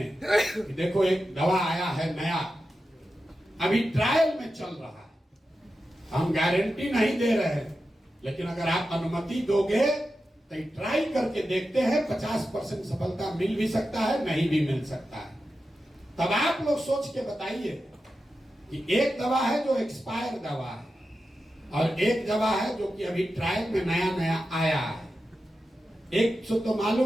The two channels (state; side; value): normal; both; correlation 0.91